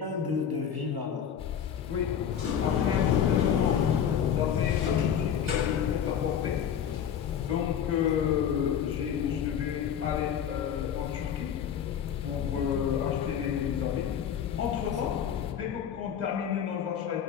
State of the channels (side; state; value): right; quieter; 8.6 dB